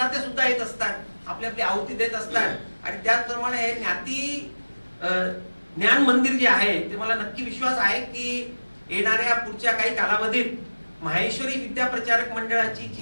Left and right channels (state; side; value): inverted; both; correlation -1.00